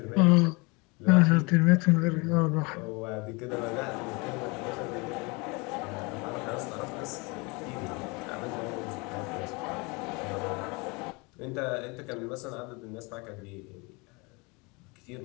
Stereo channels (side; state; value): right; quieter; 28.0 dB